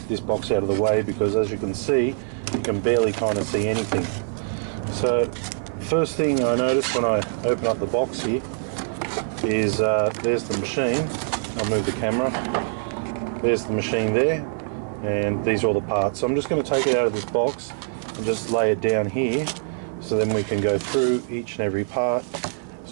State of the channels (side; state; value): left; silent; 63 dB below the other